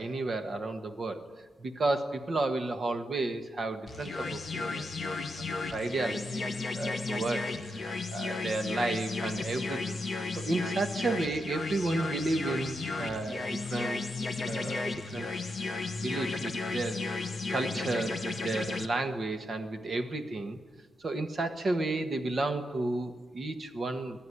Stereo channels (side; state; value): both; normal; correlation 0.84